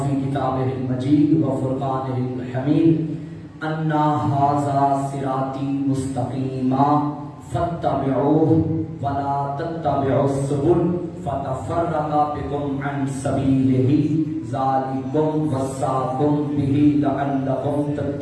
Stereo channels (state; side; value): identical; both; correlation 1.00